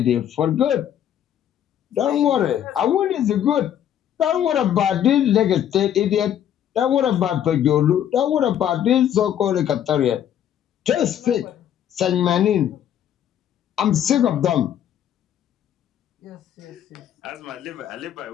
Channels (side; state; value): right; quieter; 10.3 dB